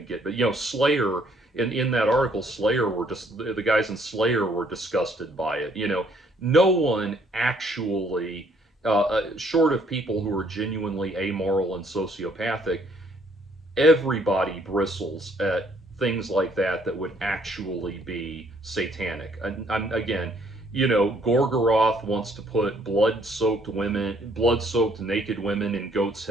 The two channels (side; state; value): both; normal; correlation 0.65